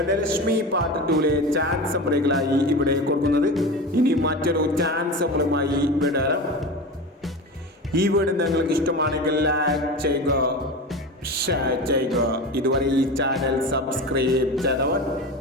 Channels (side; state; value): both; normal; correlation 0.28